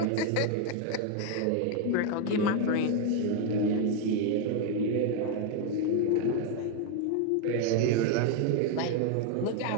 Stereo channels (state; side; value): different; both; correlation 0.01